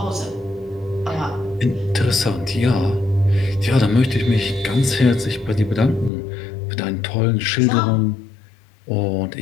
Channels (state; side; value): drops out; right; at 6.1 s